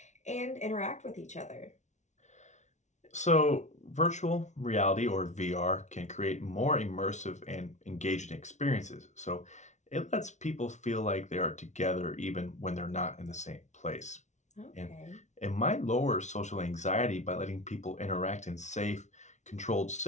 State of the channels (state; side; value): late; right; 0.34 ms